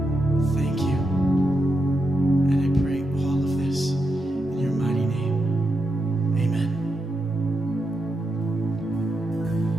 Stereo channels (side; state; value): both; normal; correlation 0.85